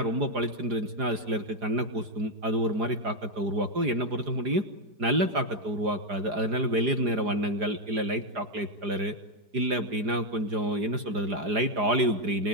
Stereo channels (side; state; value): left; late; 4.9 ms